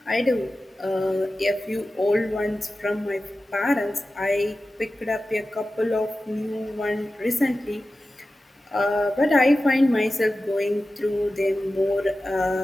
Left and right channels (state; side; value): normal; both; correlation 0.94